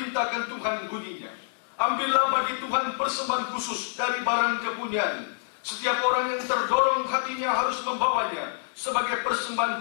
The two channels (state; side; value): silent; right; 60 dB below the other